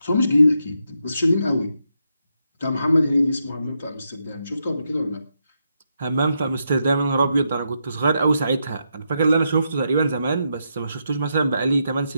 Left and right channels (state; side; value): inverted; both; correlation -0.82